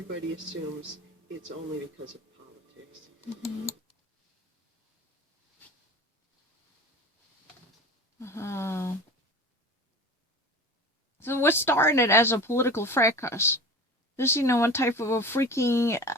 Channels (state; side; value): normal; both; correlation 0.35